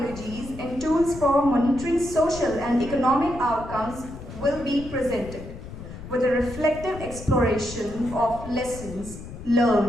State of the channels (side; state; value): left; noise; rumble, 12 dB below the sound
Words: and tools for monitoring social and economic outcomes will be presented, with a reflective exploration of lessons